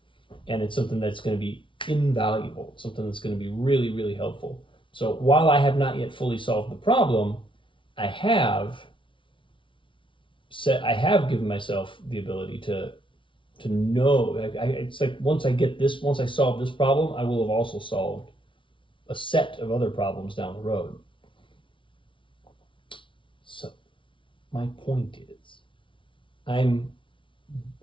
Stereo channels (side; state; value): right; late; 0.25 ms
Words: And it's something that's going to be invaluable, something that's going to be really, really helpful. So while I have not yet fully solved the problem, I have given myself the ability to know. It's like once I solve this problem, I will have also solved a set of other problems down the road. So my point is, I'm